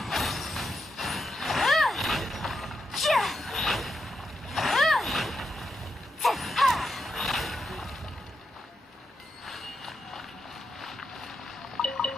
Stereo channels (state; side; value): normal; both; correlation 0.84